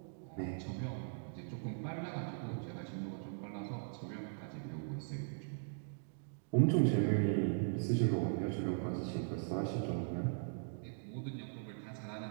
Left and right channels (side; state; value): left; silent; digital silence